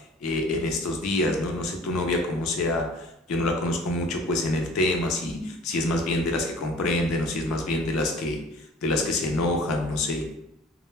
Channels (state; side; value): normal; both; correlation 0.47